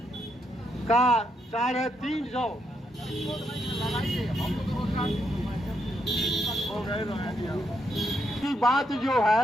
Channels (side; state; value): both; normal; correlation 0.79